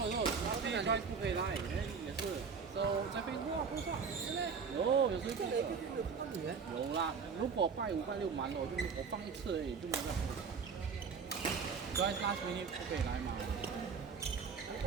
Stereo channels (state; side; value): quieter; left; 5.7 dB